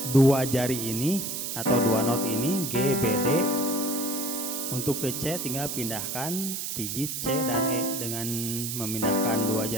dua jari ini atau dua not ini G, B, D. Untuk ke C tinggal pindahkan pijit C dan E dengan memindahkan dua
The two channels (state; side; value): noise; right; hiss, 4 dB below the sound